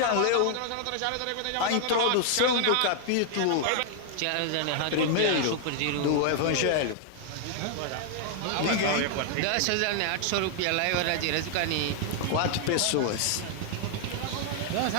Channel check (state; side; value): different; both; correlation 0.00